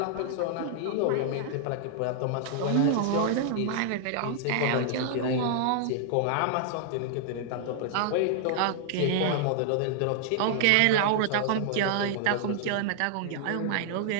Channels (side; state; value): both; different; correlation -0.01